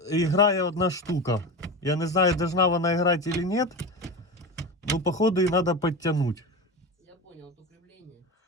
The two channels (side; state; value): both; normal; correlation 0.24